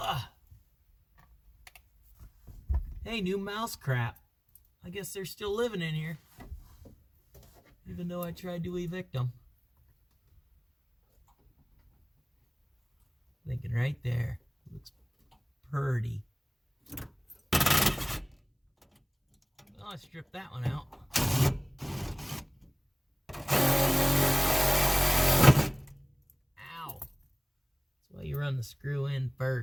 Hey, new mouse crap. I guess they're still living in here. Even though I tried to evict them. Thinking right there. Looks pretty. Well, I stripped that one out. Ow. That's why you run the screw in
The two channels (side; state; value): both; identical; correlation 1.00